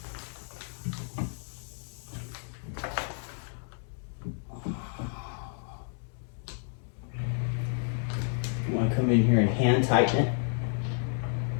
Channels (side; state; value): right; silent; 57 dB below the other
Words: You want to come in here and hand tighten it.